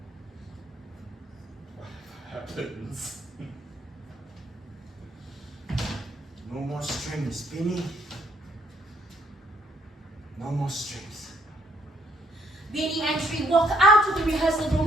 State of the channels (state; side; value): normal; both; correlation 0.67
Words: Whatever happens. No more strings, Beanie. No more strings. Beanie and Sri walk out of the rehearsal